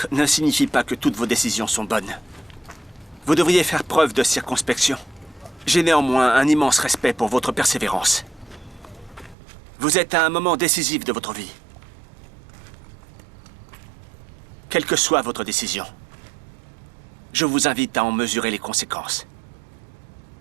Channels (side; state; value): left; drops out; at 9.3 s